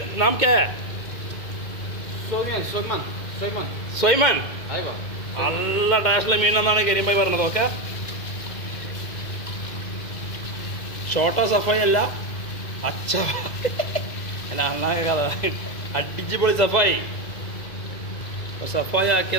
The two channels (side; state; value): right; late; 2.0 ms